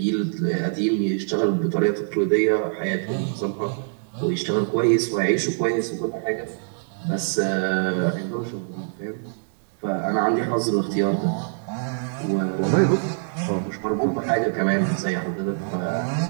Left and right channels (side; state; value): left; silent; digital silence